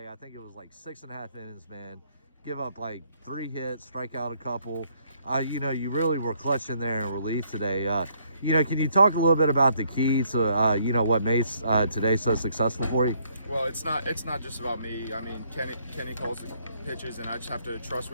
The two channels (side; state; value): both; inverted; correlation -0.68